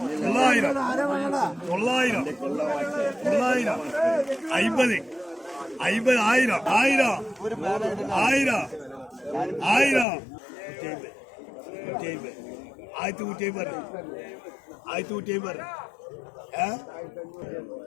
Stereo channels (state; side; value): drops out; right; at 10.1 s